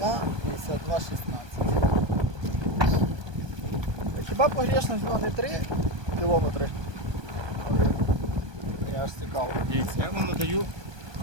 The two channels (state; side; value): late; left; 1.2 ms